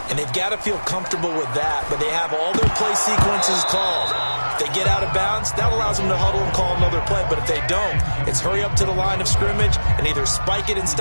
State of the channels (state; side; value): inverted; both; correlation -1.00